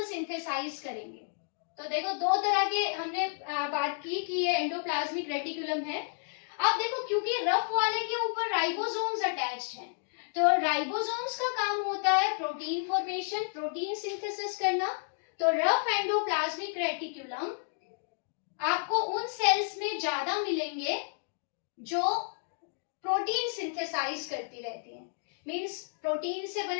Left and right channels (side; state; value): right; silent; digital silence